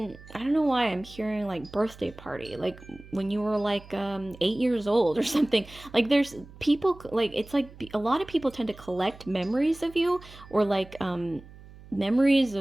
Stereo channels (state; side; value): noise; right; hum, 19 dB below the sound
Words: I don't know why I'm hearing like birthday party, like when you were like 8 years old or something. Like, there's people, like, it's like a lot of people tend to collect memories of you, or like memories